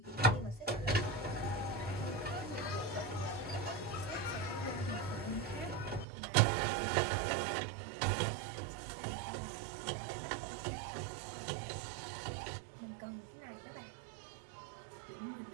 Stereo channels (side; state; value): left; drops out; at 6.1 s